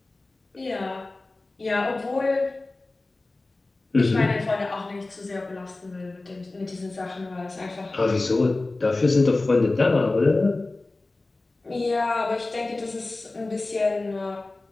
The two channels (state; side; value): quieter; right; 3.1 dB